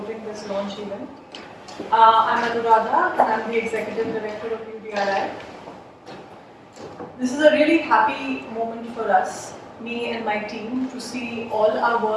this launch event. I'm Anuradha, and I'm the Executive Director of UDRI. This is a really happy moment for us, me and my team, to see all our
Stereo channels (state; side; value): identical; both; correlation 1.00